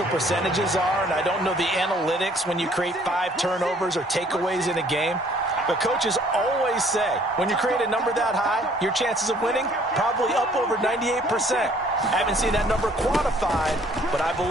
percentages are, and I don't know the analytics when you create 5 turnovers or takeaways in a game. But coaches always say, when you create a number that high, your chances of winning probably up over 98%. I haven't seen that number quantified, but I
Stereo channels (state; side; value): normal; both; correlation 0.59